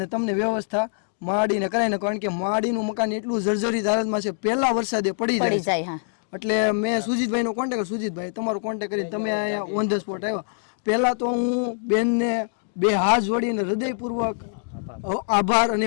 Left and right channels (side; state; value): right; silent; digital silence